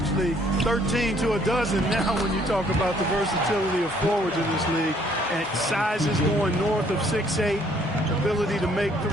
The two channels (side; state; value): both; normal; correlation 0.63